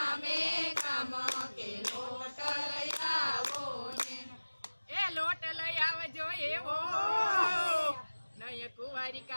गाम के लोट लयावो ने ए लोट लयावजो एवो नय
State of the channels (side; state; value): both; inverted; correlation -1.00